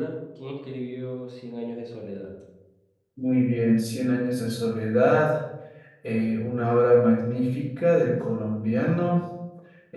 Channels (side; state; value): both; identical; correlation 1.00